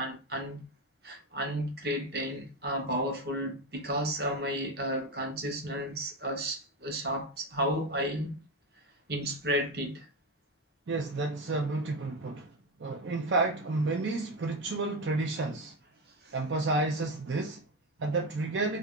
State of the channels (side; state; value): both; normal; correlation 0.15